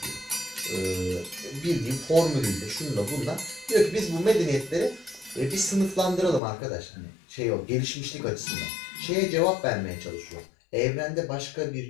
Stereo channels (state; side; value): drops out; right; at 6.4 s